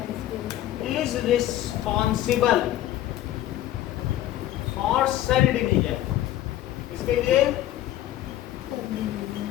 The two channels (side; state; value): right; quieter; 13.4 dB